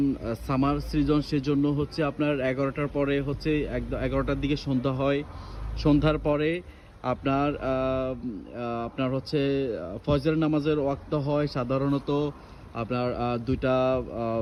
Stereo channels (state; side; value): identical; both; correlation 1.00